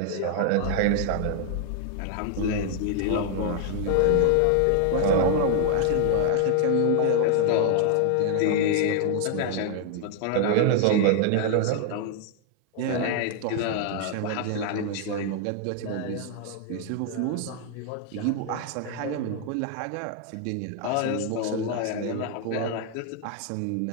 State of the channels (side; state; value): both; different; correlation 0.00